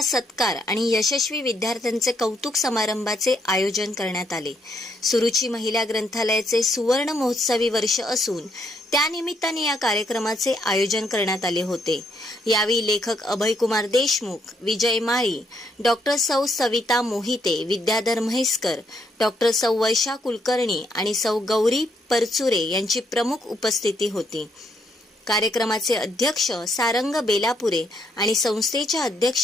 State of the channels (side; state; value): both; normal; correlation 0.74